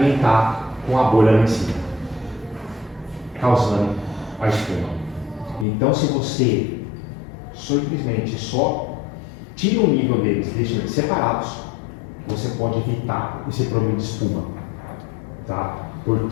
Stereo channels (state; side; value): drops out; right; at 5.7 s